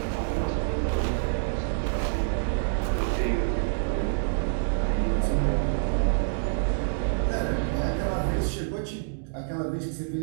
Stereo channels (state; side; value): silent; left; digital silence